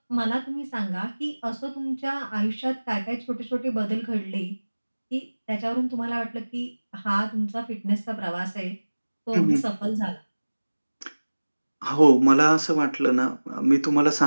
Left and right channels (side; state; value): both; inverted; correlation -1.00